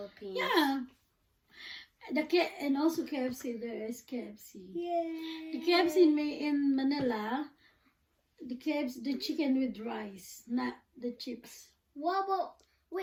yeah, and also KFC. There is KFC. Yay. The KFC in Manila, the chicken with rice, not the chips. What about?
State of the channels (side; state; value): both; identical; correlation 1.00